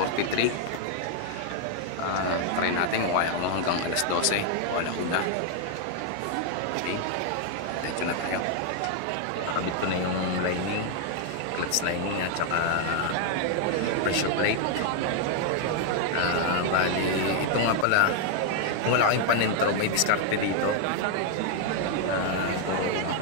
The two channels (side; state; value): both; different; correlation 0.00